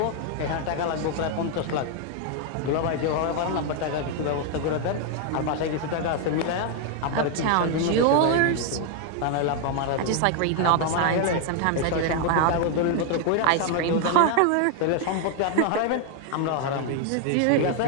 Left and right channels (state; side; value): different; both; correlation 0.00